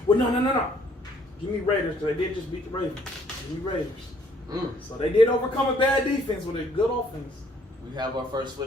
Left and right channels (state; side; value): normal; both; correlation 0.63